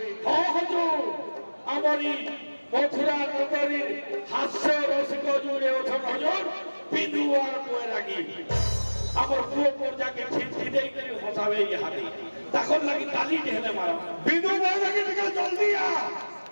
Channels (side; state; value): both; inverted; correlation -1.00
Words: हो हुजूर আমারি মথুরা নগরীর হাস্য রসিক জুড়ে ওঠেন হুজুর বিদু আর বৈরাগী আমার পুরো পর্যাকে ছিটকি দেই করে হসাবে ইহাতে তখন লাগি তালি ঢেলে মারো बिदु बौरागी निकल जल्दी आ